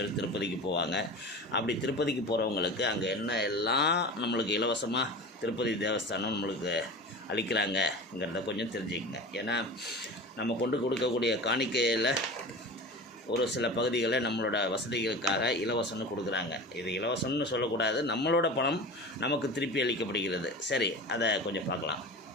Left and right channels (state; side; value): normal; both; correlation 0.33